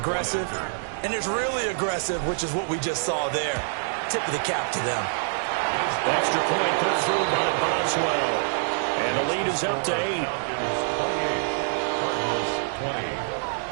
and there's really aggressive, which is what we just saw there. Tip of the cap to them. Extra point put through by Boswell. And the lead is up to 8.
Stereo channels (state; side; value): silent; left; digital silence